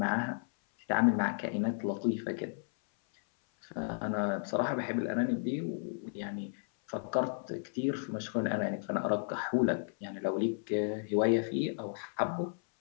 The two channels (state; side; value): silent; right; 55 dB below the other